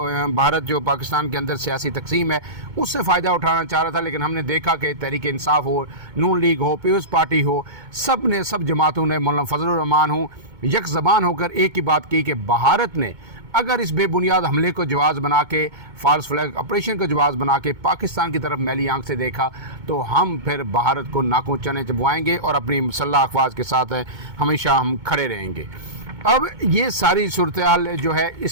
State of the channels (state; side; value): late; left; 2.2 ms